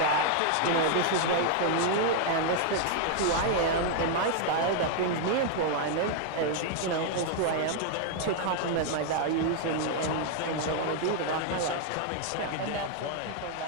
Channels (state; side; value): different; both; correlation 0.00